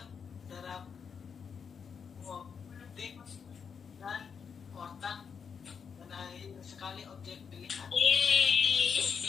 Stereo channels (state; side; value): quieter; right; 6.5 dB